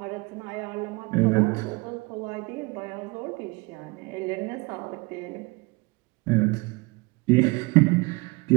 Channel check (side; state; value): left; quieter; 25.4 dB